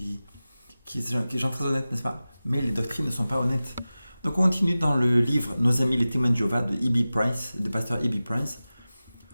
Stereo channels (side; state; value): both; inverted; correlation -0.96